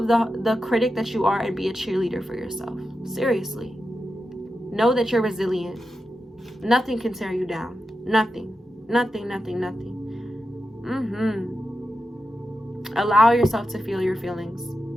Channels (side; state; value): both; normal; correlation 0.90